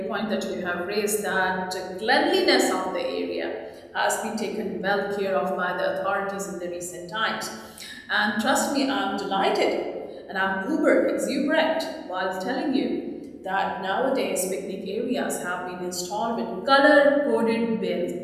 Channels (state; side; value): identical; both; correlation 1.00